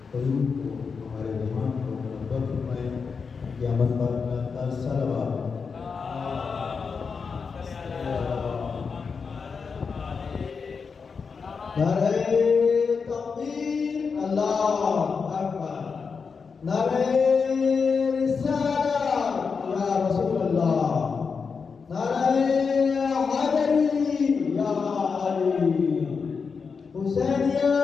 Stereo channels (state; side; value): quieter; right; 5.4 dB